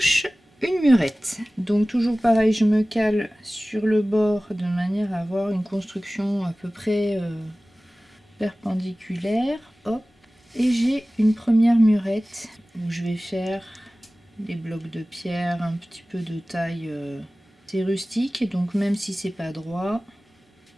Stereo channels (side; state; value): both; normal; correlation 0.97